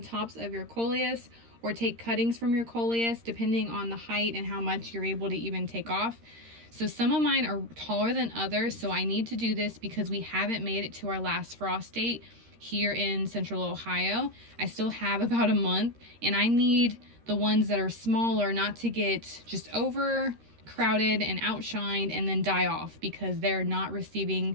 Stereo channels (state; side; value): late; left; 13 ms